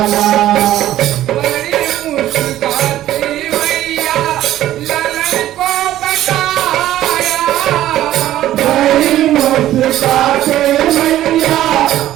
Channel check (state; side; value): quieter; left; 13.4 dB